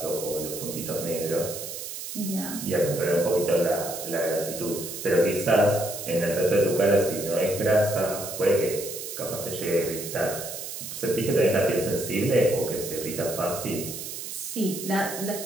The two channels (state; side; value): noise; right; hiss, 8 dB below the sound